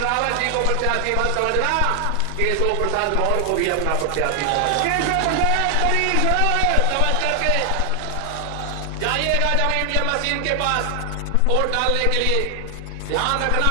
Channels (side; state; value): both; different; correlation 0.00